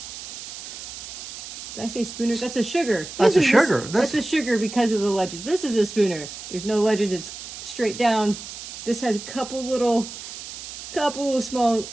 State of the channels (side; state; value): right; noise; hiss, 11 dB below the sound